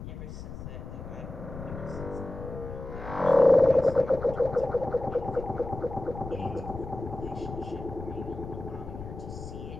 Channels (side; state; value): left; noise; rumble, 10 dB below the sound